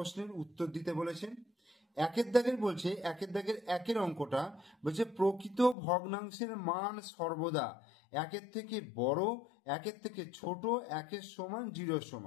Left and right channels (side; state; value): right; drops out; at 5.8 s